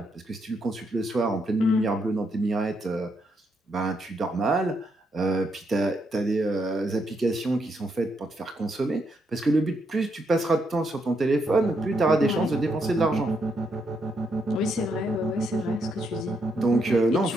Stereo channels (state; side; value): normal; both; correlation 0.78